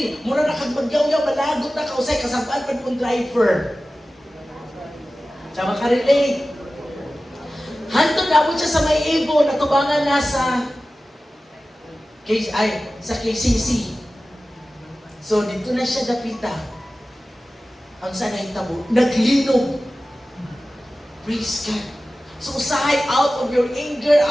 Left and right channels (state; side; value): normal; both; correlation 0.96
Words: Mura na kag magyaw-yaw, malagot na ka, usay kasabaan pa ng driver. Sa makarelate. Hantod na siya sa may Ibo, natubangan na sa KCC. So, dito na siya dapita. Ang sanay tabo, naglinog. Praise God. So, usahay out of your anger,